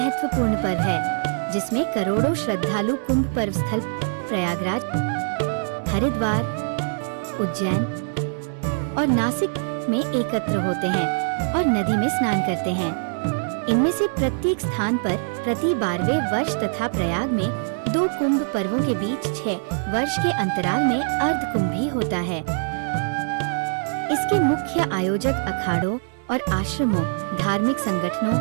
पर्व है, जिसमें करोड़ों श्रद्धालु कुंभ पर्व स्थल प्रयागराज, हरिद्वार, उज्जैन और नासिक में एकत्र होते हैं और नदी में स्नान करते हैं। इनमें से प्रत्येक स्थान पर प्रति 12वें वर्ष तथा प्रयाग में 2 कुंभ पर्वों के बीच 6 वर्ष के अंतराल में अर्ध कुंभ भी होता है। इसके मुख्य आयोजक अखाड़ों और आश्रमों, धार्मिक संगठनों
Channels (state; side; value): silent; left; 63 dB below the other